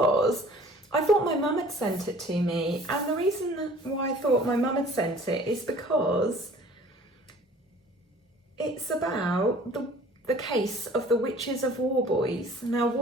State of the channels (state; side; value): normal; both; correlation 0.49